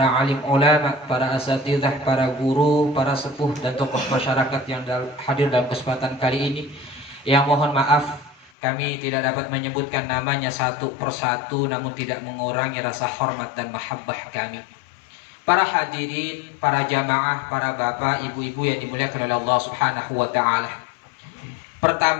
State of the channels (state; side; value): drops out; right; at 8.5 s